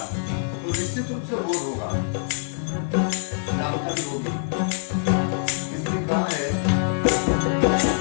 तो निश्चित रूप से बोध होगा, लाभकारी होगी। इसमें कहा है,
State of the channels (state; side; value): silent; right; 57 dB below the other